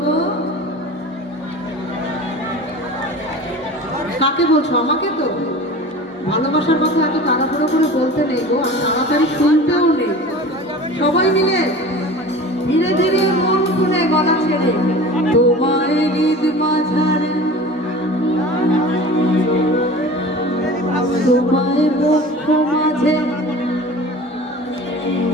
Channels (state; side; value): normal; both; correlation 0.38